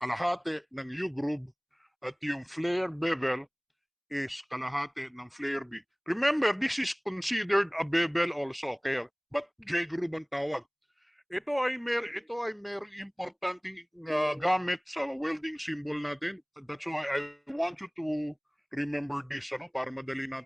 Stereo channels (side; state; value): both; identical; correlation 1.00